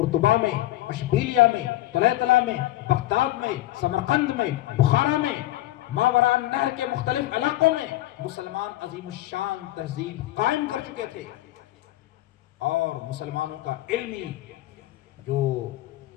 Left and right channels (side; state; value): right; quieter; 15.6 dB